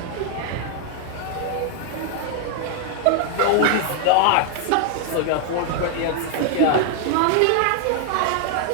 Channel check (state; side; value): different; both; correlation 0.00